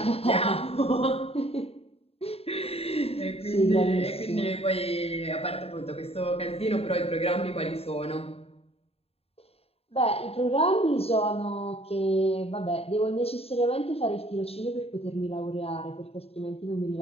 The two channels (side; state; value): right; late; 0.29 ms